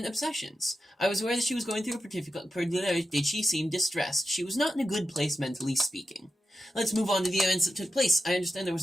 obsessions. I was aware that she was going through a particular... Did she seem distressed? She was not in a good place, mentally speaking. Let's move on to the events that took place. I understand there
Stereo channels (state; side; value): normal; both; correlation 0.90